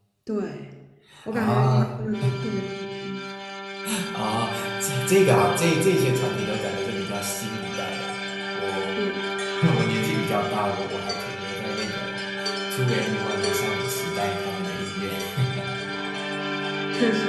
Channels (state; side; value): identical; both; correlation 1.00